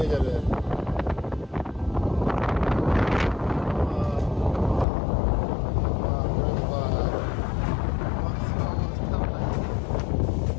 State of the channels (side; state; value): right; drops out; at 4.9 s